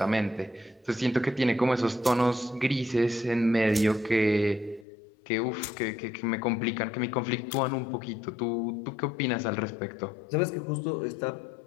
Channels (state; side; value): drops out; right; at 4.9 s